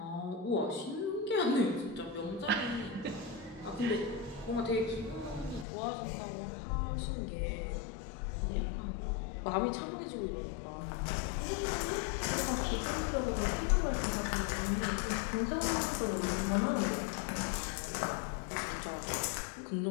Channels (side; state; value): right; drops out; at 5.7 s